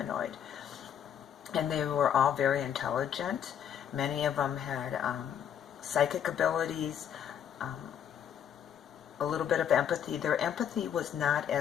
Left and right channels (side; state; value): right; quieter; 9.0 dB